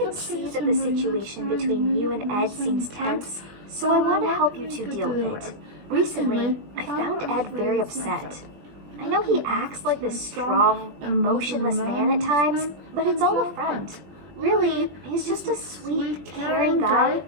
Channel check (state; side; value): late; left; 20 ms